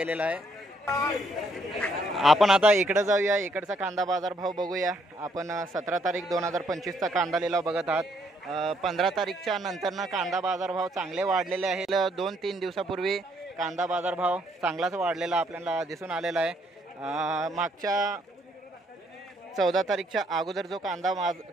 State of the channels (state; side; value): normal; both; correlation 0.70